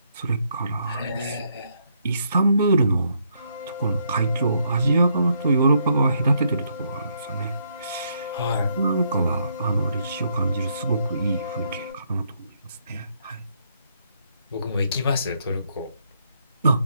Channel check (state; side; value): inverted; both; correlation -0.74